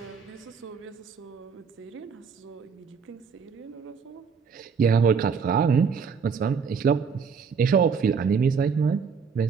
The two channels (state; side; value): quieter; left; 5.9 dB